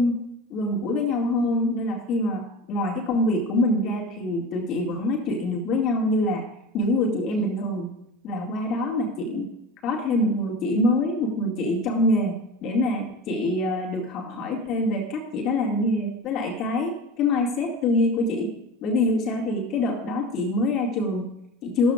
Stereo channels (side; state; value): both; normal; correlation 0.32